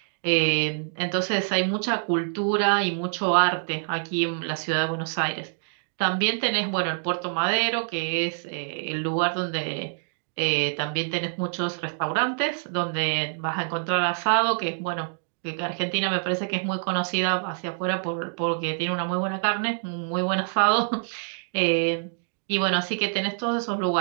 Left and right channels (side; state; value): left; silent; digital silence